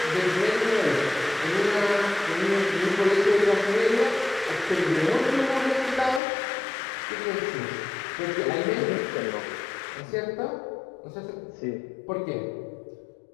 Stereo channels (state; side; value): drops out; right; at 6.2 s